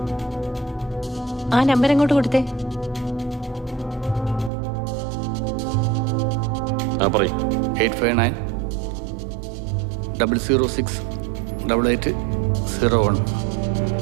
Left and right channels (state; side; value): drops out; left; at 4.5 s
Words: ആ നമ്പർ എങ്ങോട്ട് കൊടുത്തേ? പറയും. 859-006-8801.